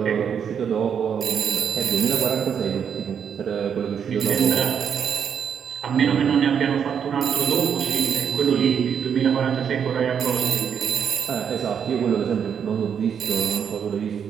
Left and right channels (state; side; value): quieter; left; 7.7 dB